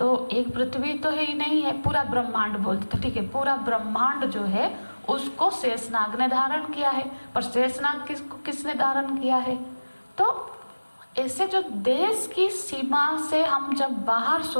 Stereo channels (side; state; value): both; inverted; correlation -1.00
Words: एक पृथ्वी तो है ही नहीं है, पूरा ब्रह्मांड बोलते, तो ठीक है, पूरा ब्रह्मांड जो है उसको शेषनाग ने धारण किया है, पर शेषनाग किसने धारण किया है? तो ऐसे जो देश की सीमा से हम जब बाहर